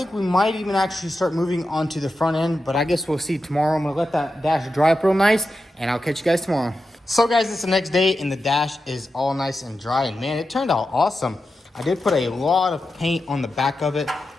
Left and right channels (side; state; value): both; normal; correlation 0.90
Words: we might even actually start moving on to the front end, but I guess we'll see tomorrow. I'm gonna let that dash dry up real nice, and I'll catch you guys tomorrow. So guys, it's the next day, and the dash is all nice and dry, and man, it turned out awesome. I did put a lot of paint on the back of it,